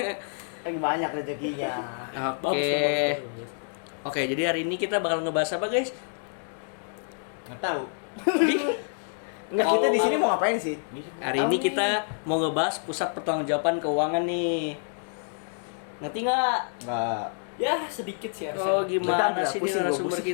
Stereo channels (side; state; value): right; silent; digital silence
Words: Lagi banyak rezekinya. Oke. Oke, jadi hari ini kita bakal ngebahas apa guys? Nggak tahu. Enggak, kita di sini mau ngapain sih? Hari ini kita mau ngebahas pusat pertanggungjawaban keuangan nih. Ngerti nggak? Enggak. Ya, sedikit sih harusnya. Oh, gimana Bentar, sih ini pusing, narasumber pusing.